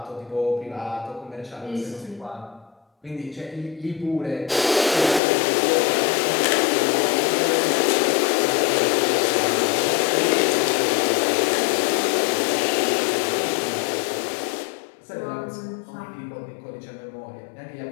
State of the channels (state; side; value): drops out; right; at 5.2 s